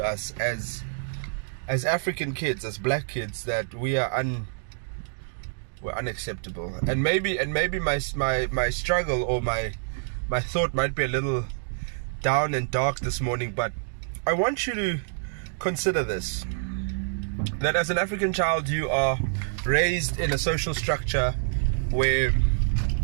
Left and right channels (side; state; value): left; silent; digital silence